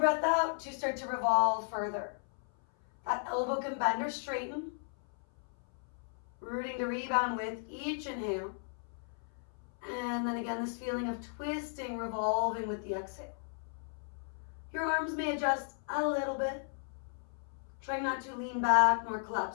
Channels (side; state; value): right; silent; 54 dB below the other